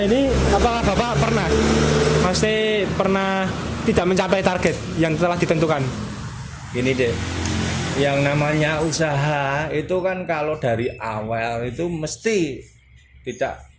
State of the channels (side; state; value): both; identical; correlation 1.00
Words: ini, apakah Bapak pernah tidak mencapai target yang telah ditentukan? Gini deh, yang namanya usaha itu kan kalau dari awal itu mesti tidak